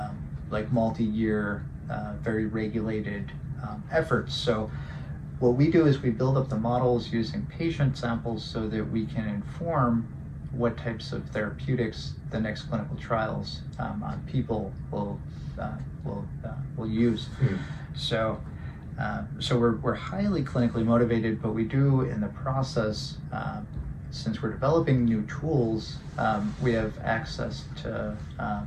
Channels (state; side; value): identical; both; correlation 1.00